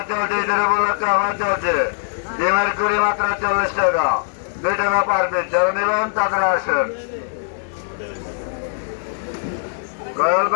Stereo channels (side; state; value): right; silent; digital silence